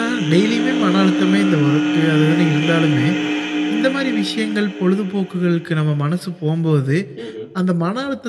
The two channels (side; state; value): both; identical; correlation 1.00